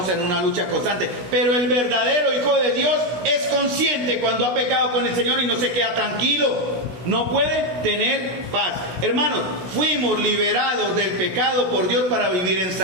en una lucha constante. Pero el verdadero Hijo de Dios es consciente cuando ha pecado con el Señor y no se queda tranquilo. No puede tener paz. Hermanos, fuimos liberados del pecado por Dios para vivir en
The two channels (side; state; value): left; late; 16 ms